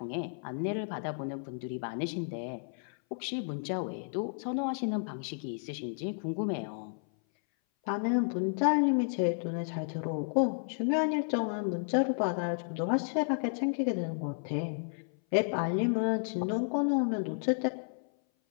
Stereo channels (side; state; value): right; silent; 56 dB below the other